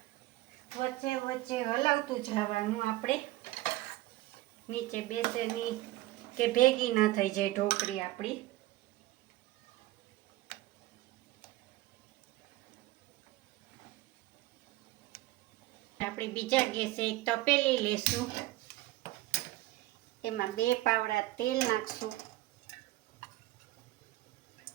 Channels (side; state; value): left; quieter; 17.4 dB